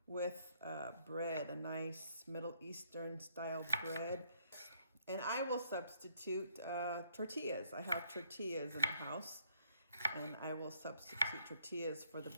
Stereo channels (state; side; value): inverted; both; correlation -0.69